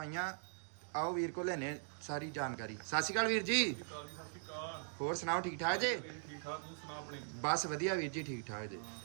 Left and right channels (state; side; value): silent; left; digital silence